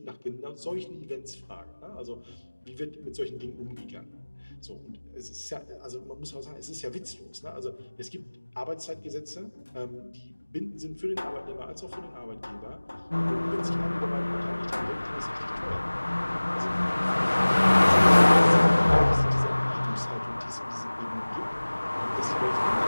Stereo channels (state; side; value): inverted; both; correlation -1.00